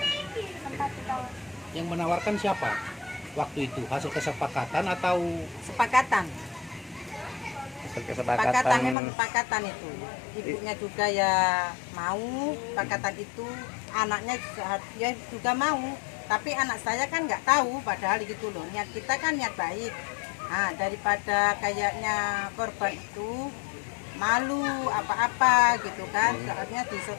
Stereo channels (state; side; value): drops out; right; at 9.0 s